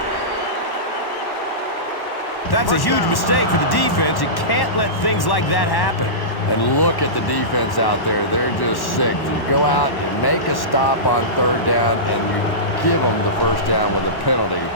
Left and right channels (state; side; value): late; right; 1.1 ms